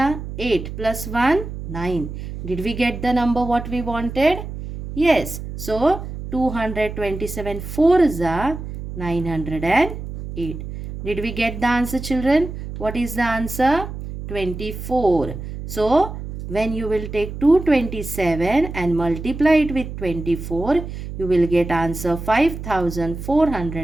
8 plus 1, 9. Did we get the number what we wanted? Yes. So 227 fours are 908. Did we get the answer, children? What is the answer? 24. So when you will take 227 and multiply it with 24, you will get answer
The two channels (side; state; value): right; noise; hum, 9 dB below the sound